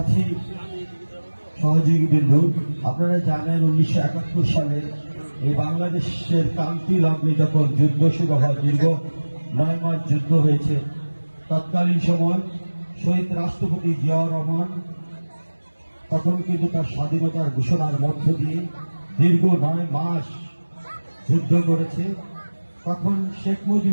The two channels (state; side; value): inverted; both; correlation -1.00